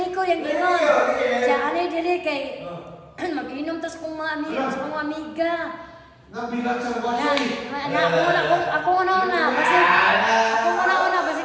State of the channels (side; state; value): both; identical; correlation 1.00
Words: yang ginon. Siya ani diri kay mag-inom tas kung mga amiga. Nabilang sa wasay. Ako una basi